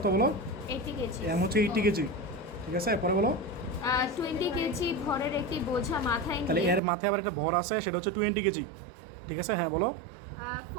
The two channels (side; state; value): left; drops out; at 6.8 s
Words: বলো? 80 কেজি এম হচ্ছে 80 কেজি, ঠিক আছে? পরে বলো 20 কেজি ভরের একটি বোঝা মাথায় তাহলে নিয়ে এর মাথায় আবার একটা ভর আছে, সেটা হচ্ছে 20 কেজি, ঠিক আছে? হ্যাঁ বলো।